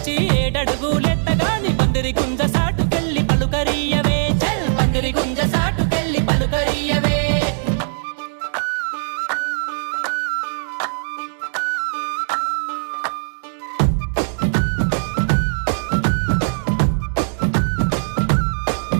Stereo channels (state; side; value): silent; left; digital silence